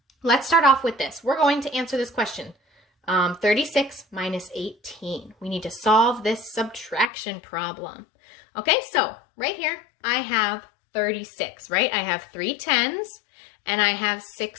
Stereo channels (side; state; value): right; drops out; at 7.1 s